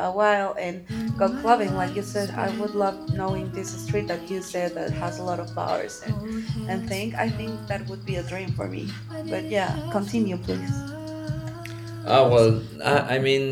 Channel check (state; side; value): identical; both; correlation 1.00